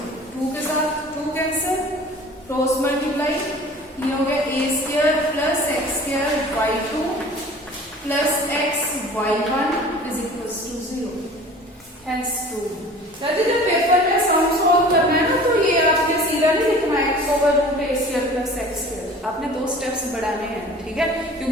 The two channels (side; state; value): both; normal; correlation 0.44